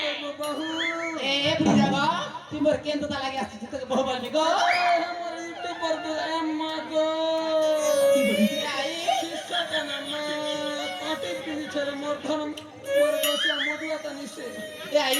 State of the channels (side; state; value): both; identical; correlation 1.00